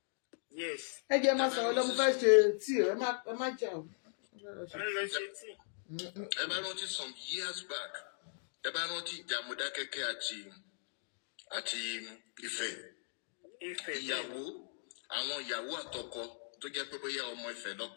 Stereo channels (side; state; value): right; silent; digital silence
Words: Yes. Ẹ jẹ́ máa sọ̀rọ̀ lọ́mú fẹ́ ṣe tí ẹ má jà o. Wọ́n lọ ṣe tí. Ẹ bá rántí some years back ẹ bá rántí ìjà Mọdákẹ́kẹ́ àti Ifẹ̀. Àwọn ìyàwó àtọkọ tó jẹ́ pé bóyá ọmọ Ifẹ̀